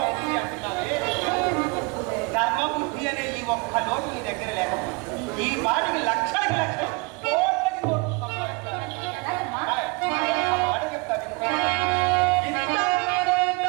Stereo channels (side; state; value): left; quieter; 29.4 dB